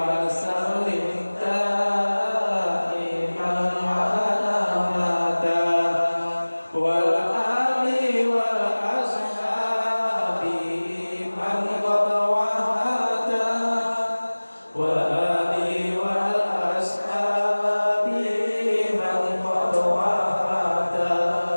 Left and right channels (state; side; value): inverted; both; correlation -1.00